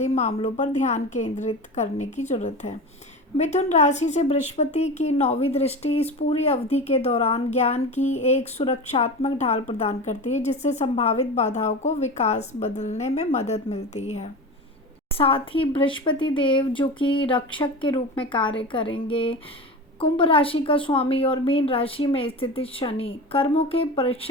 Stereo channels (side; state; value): both; normal; correlation 0.28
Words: मामलों पर ध्यान केंद्रित करने की जरूरत है। मिथुन राशि से बृहस्पति की 9वीं दृष्टि इस पूरी अवधि के दौरान ज्ञान की एक सुरक्षात्मक ढाल प्रदान करती है, जिससे संभावित बाधाओं को विकास बदलने में मदद मिलती है। साथ ही बृहस्पति देव, जो कि रक्षक के रूप में कार्य करेंगे, कुंभ राशि का स्वामी और मीन राशि में स्थित शनि कर्मों के